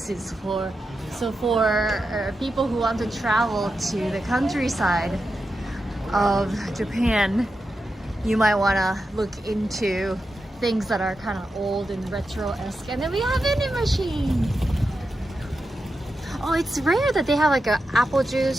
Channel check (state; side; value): normal; both; correlation 0.89